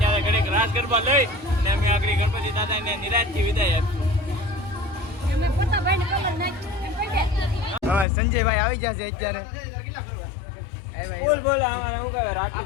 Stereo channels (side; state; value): right; drops out; at 8.1 s